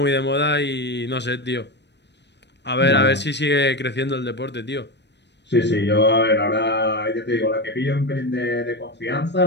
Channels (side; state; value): right; late; 0.50 ms